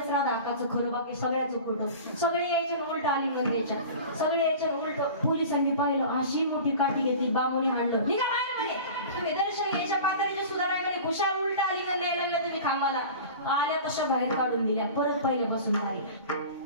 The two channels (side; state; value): both; inverted; correlation -0.37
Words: राधा अक्काचं खरं, बाकी सगळ्याचं खोटं. सगळे यायचे उलट आलिंगन द्यायच्या. सगळे यायचे उलट. पोलिसांनी पाहिलं. अशी मोठी काठी घेतली. बामुनी हाणलं. निघा बाहेर म्हणे. तुम्ही दर्शन घ्यायच्या पातळीचे सुधाराय म्हणे. खुशाल उलट आलिंगन द्यायला लागल्या तुम्ही खांबाला. आल्या तशा बाहेर काढून दिल्या. परत पहिल्यापासून आली.